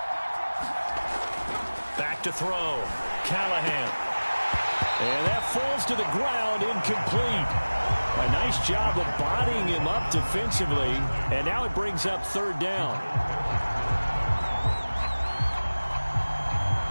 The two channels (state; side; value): inverted; both; correlation -1.00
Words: Back to throw. Callahan. And that falls to the ground, incomplete. A nice job of bodying him up defensively. And now it brings up 3rd down.